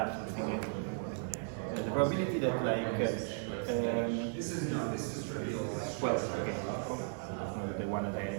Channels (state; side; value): silent; left; 54 dB below the other